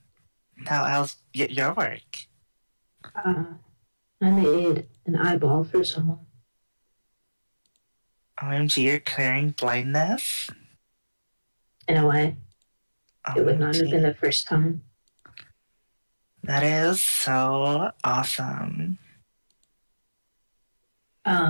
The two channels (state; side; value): inverted; both; correlation -1.00